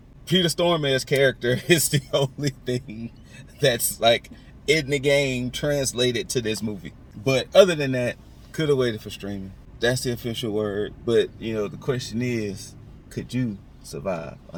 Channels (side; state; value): both; identical; correlation 1.00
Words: Peter Stormare's character is the only thing that's like in the game translated to this movie. But other than that, could have waited for streaming. That's the official word. But, the question is, could you survive